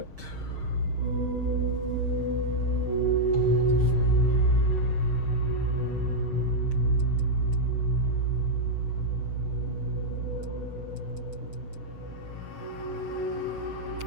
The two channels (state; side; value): late; left; 6.4 ms